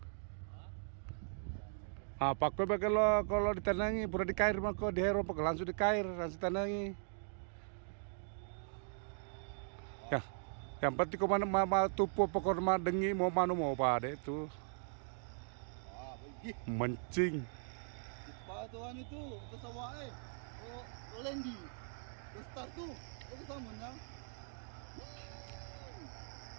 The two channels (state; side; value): silent; left; digital silence